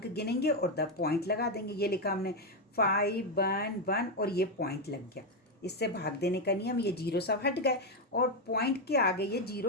गिनेंगे और द पॉइंट लगा देंगे। ये लिखा हमने 5 1 1 और ये पॉइंट लग गया। इससे भाग देने का नियम, ये जीरो सब हट गए और पॉइंट के आगे ये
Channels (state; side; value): normal; both; correlation 0.05